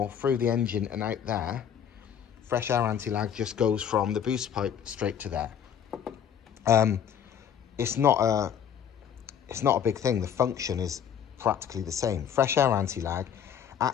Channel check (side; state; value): right; quieter; 8.7 dB